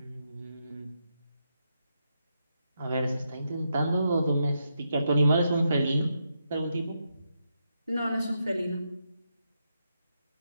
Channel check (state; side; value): inverted; both; correlation -0.83